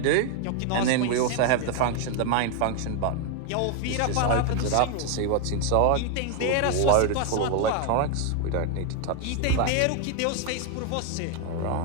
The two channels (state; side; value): different; both; correlation 0.00